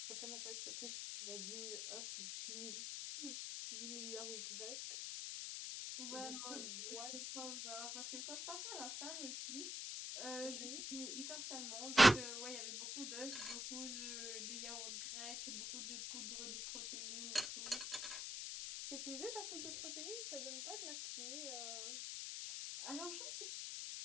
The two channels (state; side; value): noise; left; hiss, 3 dB below the sound